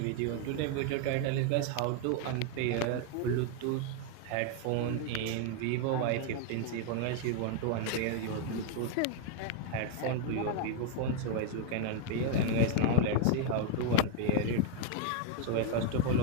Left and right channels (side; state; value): both; different; correlation 0.00